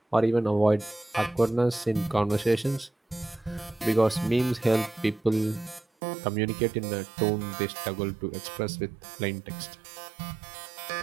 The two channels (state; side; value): drops out; left; at 5.9 s